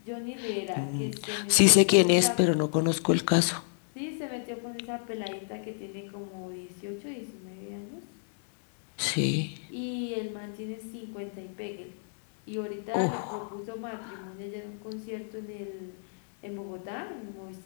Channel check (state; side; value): silent; right; digital silence